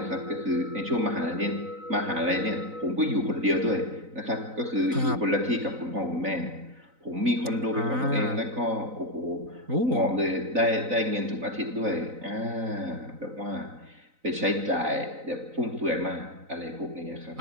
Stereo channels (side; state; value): left; late; 3.9 ms